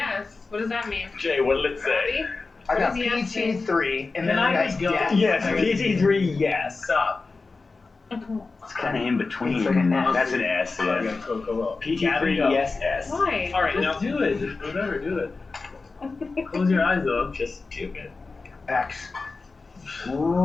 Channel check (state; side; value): quieter; right; 4.0 dB